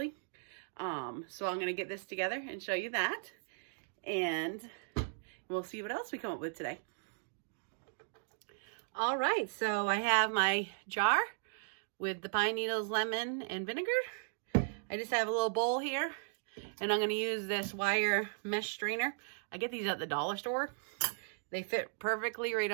So I'm going to get this together and show you that. And we'll see what else we come up with today. All right, so I have my jar with the pine needles, lemon, and vinegar. I just have a little bowl here, and I'm going to use this wire mesh strainer. I get these at the dollar store. They fit perfectly right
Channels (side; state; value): left; silent; digital silence